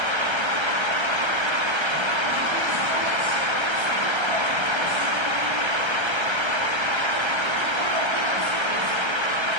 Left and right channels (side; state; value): left; late; 1.3 ms